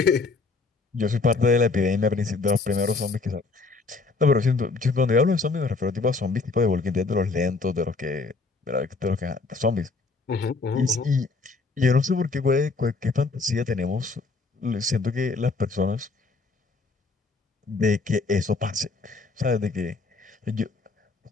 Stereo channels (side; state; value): right; quieter; 3.8 dB